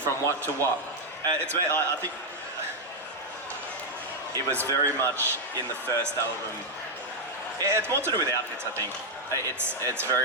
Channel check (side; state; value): both; normal; correlation 0.00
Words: what to what. I think it was very much in the first album. It's more to do with outfits, I think. It's